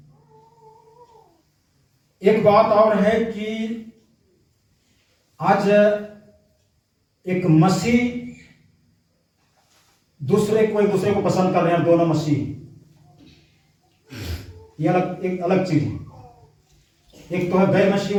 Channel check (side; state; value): both; identical; correlation 1.00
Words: एक बात और है कि आज एक मसीह एक दूसरे को पसंद कर रहे हैं, दोनों मसीह, ये एक अलग चीज है। एक तो है गैर मसीह